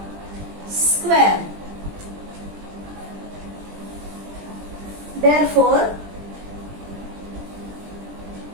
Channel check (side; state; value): left; late; 20 ms